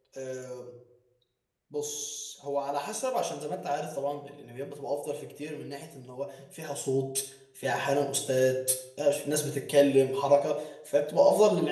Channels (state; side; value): identical; both; correlation 1.00